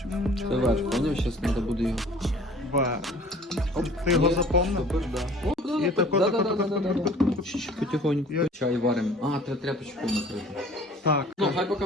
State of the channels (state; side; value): normal; both; correlation 0.50